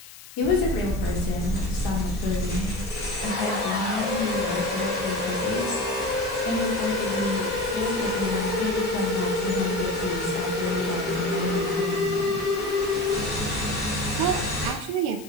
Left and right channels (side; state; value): left; noise; hiss, 18 dB below the sound